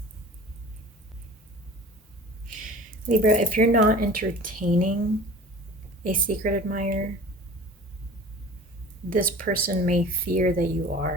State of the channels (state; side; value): normal; both; correlation 0.42